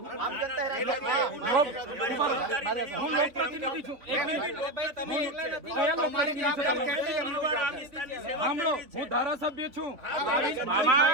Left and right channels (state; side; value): late; left; 3.7 ms